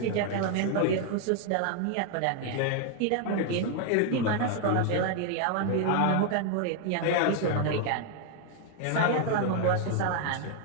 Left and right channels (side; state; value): both; different; correlation 0.00